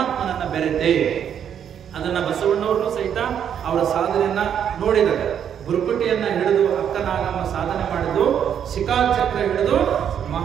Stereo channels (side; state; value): left; quieter; 8.7 dB